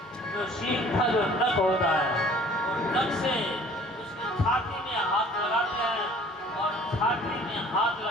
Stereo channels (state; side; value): normal; both; correlation 0.52